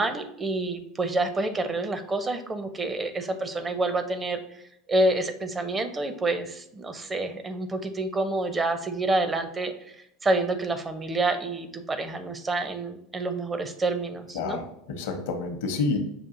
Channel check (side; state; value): both; normal; correlation 0.62